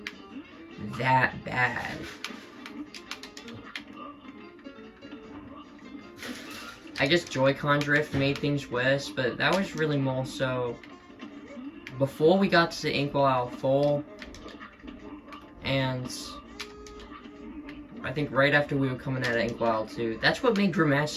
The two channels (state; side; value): identical; both; correlation 1.00